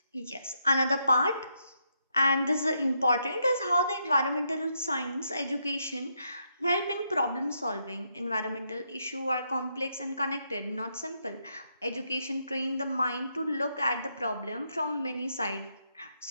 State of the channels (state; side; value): inverted; both; correlation -0.79